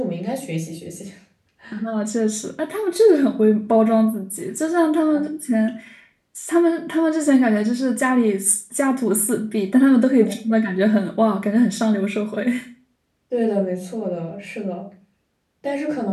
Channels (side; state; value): both; identical; correlation 1.00